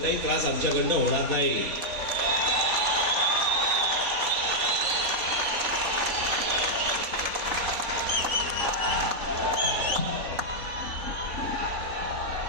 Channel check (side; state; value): left; late; 3.9 ms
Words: त्रास आमच्याकडनं होणार नाही.